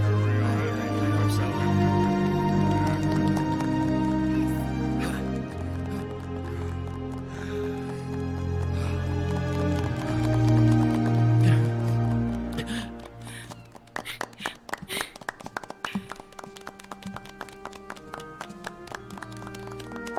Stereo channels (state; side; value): identical; both; correlation 1.00